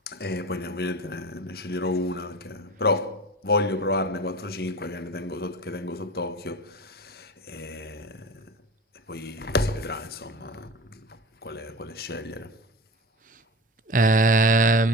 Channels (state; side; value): normal; both; correlation 0.32